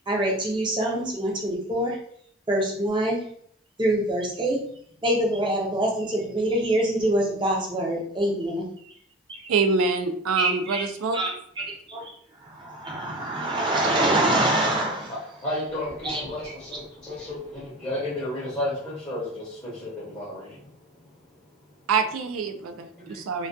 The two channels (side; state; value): both; normal; correlation 0.33